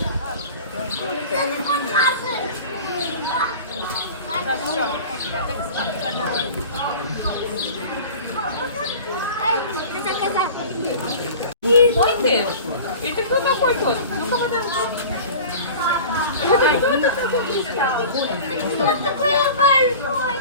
Это кто такой тот?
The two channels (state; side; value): inverted; both; correlation -0.39